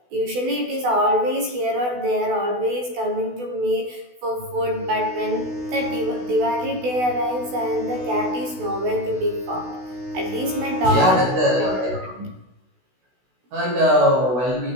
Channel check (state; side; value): late; left; 16 ms